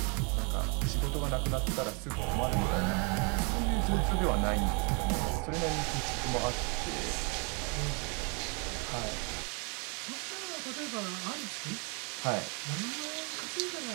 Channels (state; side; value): quieter; left; 34.9 dB